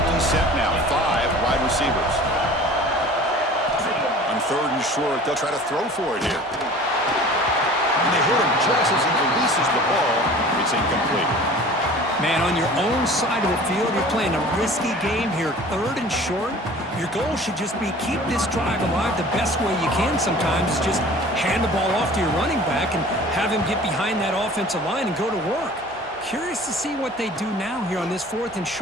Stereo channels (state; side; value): normal; both; correlation 0.44